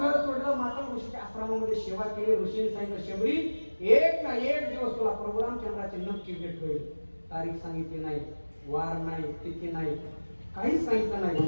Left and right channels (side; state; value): both; inverted; correlation -1.00